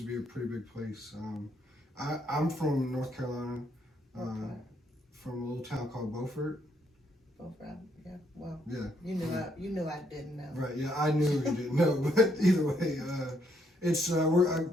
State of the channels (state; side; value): normal; both; correlation 0.73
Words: to be a pretty big place. I'm from North Carolina, from a little town called Beaufort. Beaufort, yeah. Well, Yeah. You knew I didn't know. Right. Yeah, I knew you didn't know, but either way, it's I